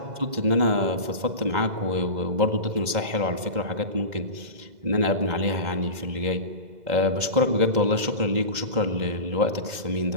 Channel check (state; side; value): late; left; 2.0 ms